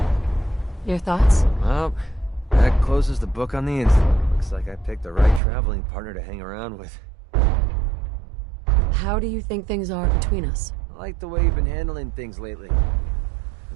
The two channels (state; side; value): drops out; left; at 5.4 s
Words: Your thoughts? Well, that closes the book on the incident. Looks like I picked the right traveling partner to hang around with. How do you think things are between us? I like the way you've been handling things lately.